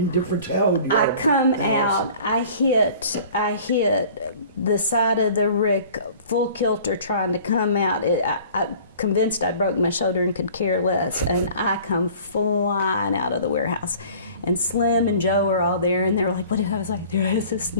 different town. I come out, I hit the side of the rick full kilter trying to come out. I convinced I broke my shoulder and could care less, and I come flying out of the warehouse. And Slim and Joe were all there, and they were like, what? I was like, there is a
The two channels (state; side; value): inverted; both; correlation -0.48